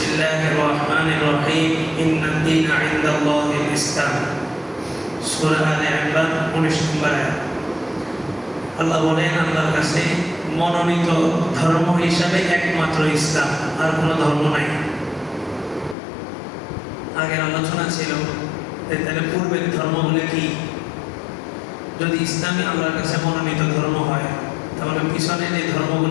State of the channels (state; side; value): drops out; right; at 16.0 s